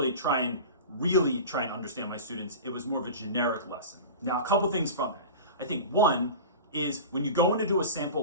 try and understand my students. It was more of a generic lesson. Now, a couple things from that. I think one is when you go in to do a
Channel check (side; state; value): both; inverted; correlation -0.32